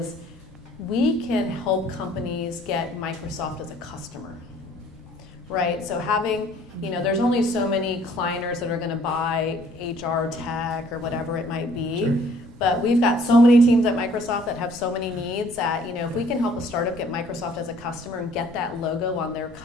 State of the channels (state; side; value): normal; both; correlation 0.58